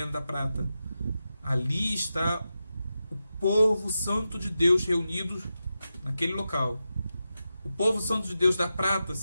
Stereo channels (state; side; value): inverted; both; correlation -0.90